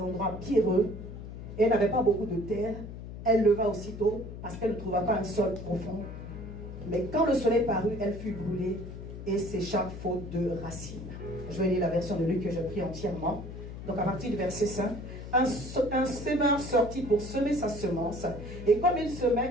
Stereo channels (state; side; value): noise; left; hum, 10 dB below the sound